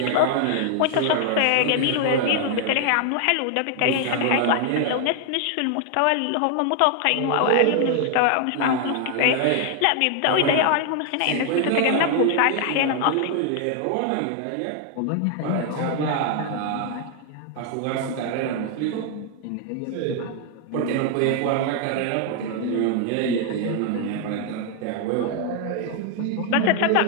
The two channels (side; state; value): both; different; correlation 0.00